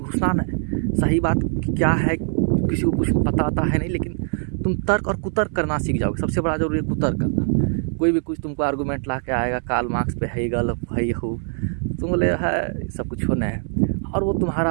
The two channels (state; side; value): silent; left; 56 dB below the other